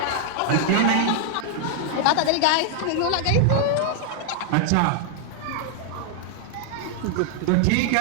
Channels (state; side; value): different; both; correlation 0.00